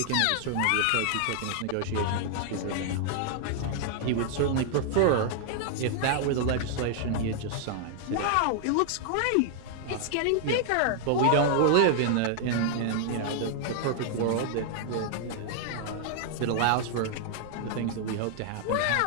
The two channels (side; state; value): both; different; correlation 0.00